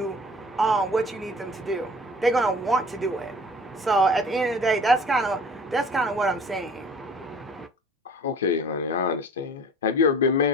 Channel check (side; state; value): both; normal; correlation 0.47